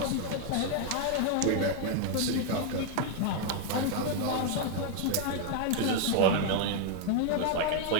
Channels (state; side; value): different; both; correlation 0.00